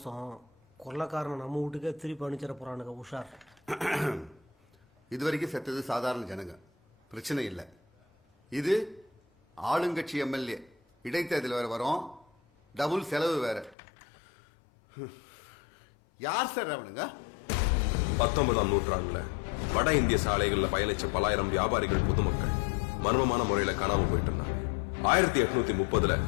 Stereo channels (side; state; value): right; drops out; at 13.8 s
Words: கொள்ளக்காரனை நம்ம வீட்டுக்கே திருப்பி அனுப்பிச்சிட போறானுங்க. உஷார். இது வரைக்கும் செத்தது சாதாரண ஜனங்க, பிரச்சனை இல்லை. இது ஆளுங்கட்சி எம்எல்ஏ, இடைத்தேர்தல் வேற வரும், டபுள் செலவு வேற. யார் சார் அவனுங்க? 19ஆம் நூற்றாண்டுல வட இந்திய சாலைகள்ல பயணிச்ச பலாயிரம் வியாபாரிகள் பொதுமக்கள் மர்மமான முறையில காணாம போயிட்டு இருந்தாங்க. 1830ல